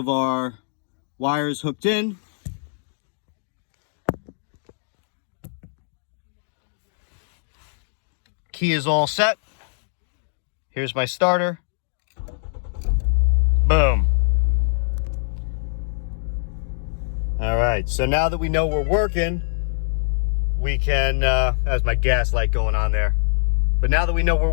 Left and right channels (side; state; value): right; silent; digital silence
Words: our wires hooked in. Key is all set. Here's my starter. Boom. All right, so now that we know we're working, we can, that's my gas light going on there. But now that we know we're